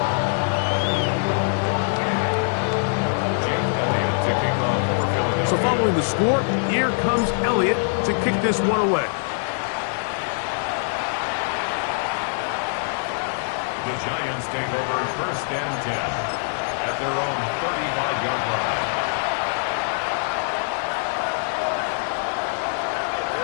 Jake Elliott to kick off for Philadelphia. So following the score, here comes Elliott to kick this one away. The Giants take over 1st and 10 at their own 35-yard line.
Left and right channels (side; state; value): right; silent; digital silence